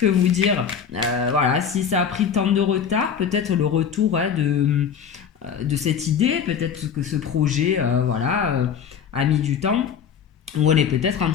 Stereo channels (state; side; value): quieter; right; 7.4 dB